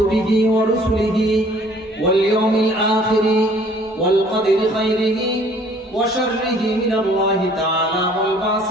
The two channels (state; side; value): normal; both; correlation 0.56